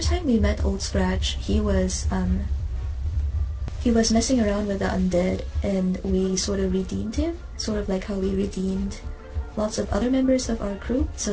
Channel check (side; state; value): both; identical; correlation 1.00